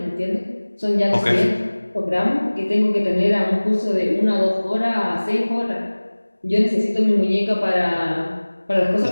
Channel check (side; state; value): both; inverted; correlation -1.00